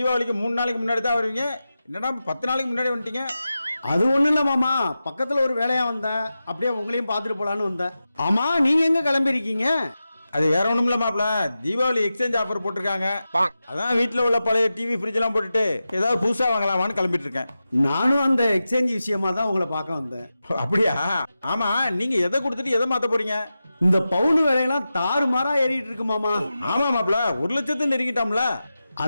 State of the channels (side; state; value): both; inverted; correlation -0.92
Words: 3 நாளைக்கு முன்னாடி தான் வருவீங்க, என்னடா 10 நாளைக்கு முன்னாடி வந்துட்டீங்க? அது ஒண்ணும் இல்ல மாமா, பக்கத்துல ஒரு வேலையா வந்தேன், அப்படியே உங்களையும் பார்த்துட்டு போலான்னு வந்தேன். ஆமா நீங்க எங்க கிளம்பிருக்கீங்க? அது வேற ஒண்ணும் இல்ல மாப்பிள, தீபாவளி எக்ஸ்சேஞ்ச் ஆஃபர் போட்டிருக்காங்க. அதான் வீட்டுல உள்ள பழைய டிவி ஃப்ரிட்ஜ் எல்லாம் போட்டுட்டு ஏதாவது புதுசா வாங்கலாமான்னு கிளம்பிட்டு இருக்கேன். நானும் அந்த எக்ஸ்சேஞ்ச் விஷயமா தான் உங்களை பார்க்க வந்தேன். அப்படியா? ஆமா, நீங்க எதை கொடுத்துட்டு எதை மாத்த போறீங்க? இந்த பவுன் விலையெல்லாம் தாறுமாறா ஏறிட்டு இருக்கு மாமா. ஆமா மாப்பிள, 1 லட்சத்தை நெருங்கிட்டோம்ல.